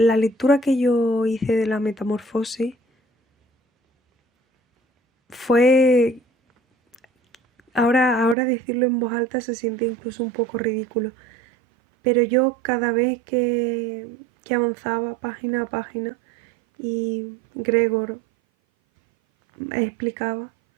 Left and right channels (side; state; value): left; drops out; at 8.3 s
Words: lectura que yo hice de La Metamorfosis fue, ahora decirlo en voz alta se siente incluso un poco ridículo, pero yo cada vez que avanzaba página a página y Gregor explicaba